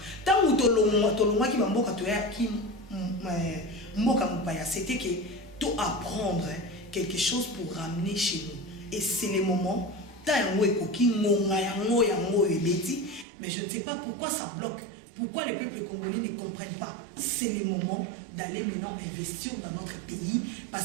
Tant ou tolongwa ki ba mboka to ya ki mboka mupaya, c'était que tout apprendre quelque chose pour ramener chez nous. Et c'est le moment, mais je ne sais pas pourquoi ça bloque. Pourquoi les peuples congolais ne comprennent pas? C'est le moment d'aller maintenant investir dans notre pays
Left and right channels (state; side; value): drops out; left; at 13.2 s